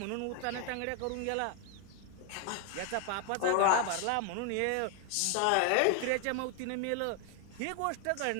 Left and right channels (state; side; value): different; both; correlation 0.00